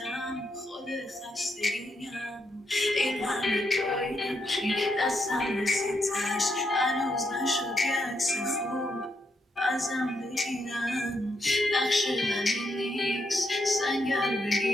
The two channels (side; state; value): both; normal; correlation 0.79